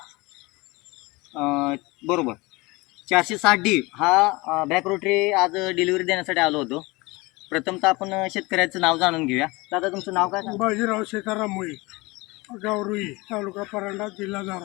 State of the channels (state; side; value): quieter; right; 23.6 dB